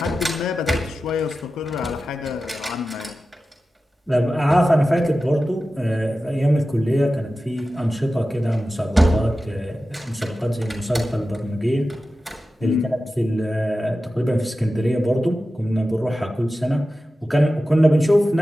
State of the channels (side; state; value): both; normal; correlation 0.94